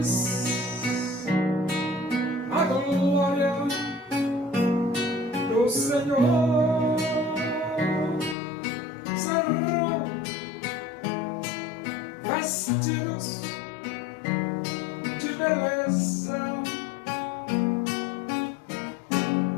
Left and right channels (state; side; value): drops out; right; at 8.3 s